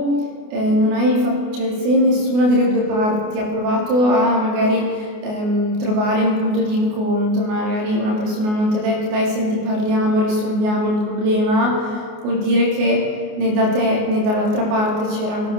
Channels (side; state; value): left; late; 28 ms